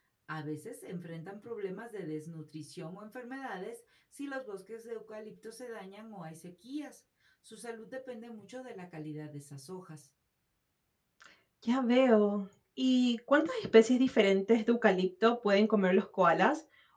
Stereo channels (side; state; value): both; identical; correlation 1.00